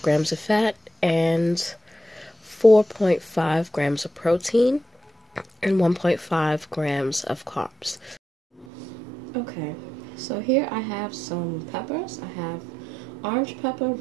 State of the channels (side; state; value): left; drops out; at 8.7 s